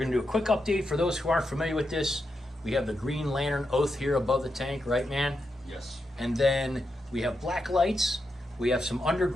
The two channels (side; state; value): both; normal; correlation 0.85